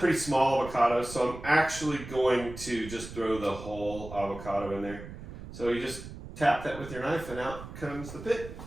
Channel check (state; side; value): noise; right; rumble, 12 dB below the sound